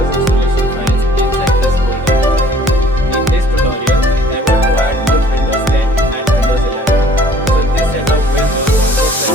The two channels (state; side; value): normal; both; correlation 0.55